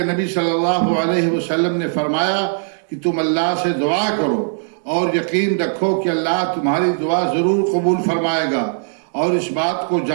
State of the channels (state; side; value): silent; left; 67 dB below the other